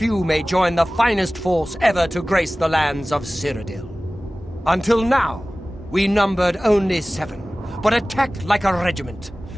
may join the finest force ever to grace the lands of Cyrodiil. Until now, we numbered only 7, but attacked like a regiment.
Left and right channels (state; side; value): normal; both; correlation 0.98